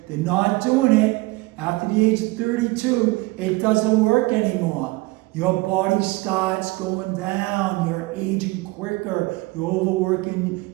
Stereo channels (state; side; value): quieter; left; 22.3 dB